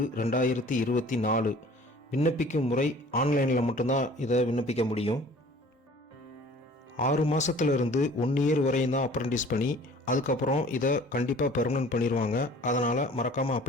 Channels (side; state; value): both; normal; correlation 0.49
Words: விண்ணப்பிக்கும் முறை ஆன்லைனில் மட்டும்தான் இதை விண்ணப்பிக்க முடியும். 6 மாதத்துலேருந்து 1 இயர் வரையும் தான் அப்ரண்டிஸ் பண்ணி, அதுக்கப்புறம் இதை கண்டிப்பாக பெர்மனன்ட் பண்ணிடுவாங்க. அதனால் மறக்காமல்